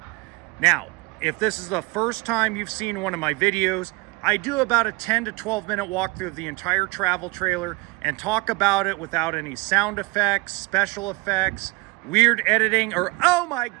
Now, if this is the first time you've seen one of my videos, I do about a 10 to 12 minute walkthrough of the entire travel trailer and talk about it without any sound effects, special effects, weird editing, or oh my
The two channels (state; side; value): quieter; left; 26.2 dB